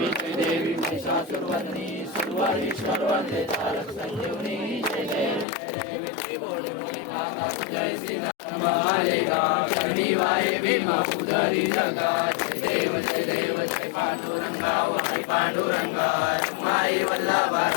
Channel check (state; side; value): drops out; right; at 5.5 s